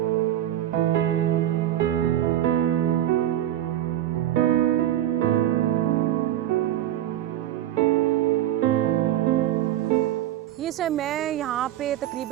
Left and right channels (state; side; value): quieter; left; 12.4 dB